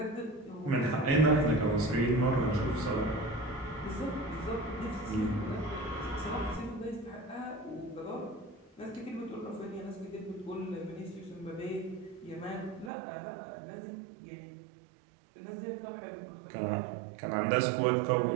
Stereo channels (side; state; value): left; drops out; at 12.9 s